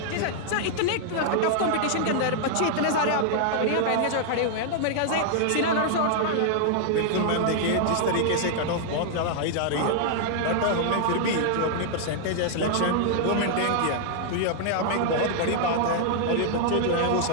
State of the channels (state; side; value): different; both; correlation 0.00